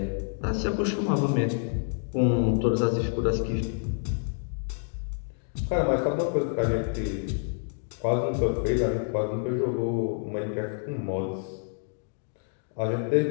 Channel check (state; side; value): silent; right; digital silence